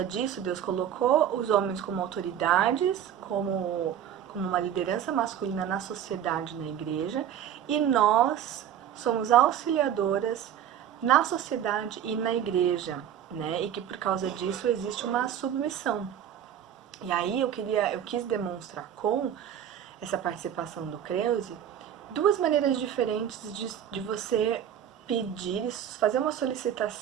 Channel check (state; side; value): quieter; left; 9.8 dB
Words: disso, Deus colocou os homens como autoridades, como uma liderança masculina na sociedade, na igreja, e nós somos auxiliadoras na sociedade e na igreja, né? E que por causa disso existe uma submissão. E aí eu quis demonstrar com essa participação do Creuze duas maneiras diferentes de você pedir, fazer uma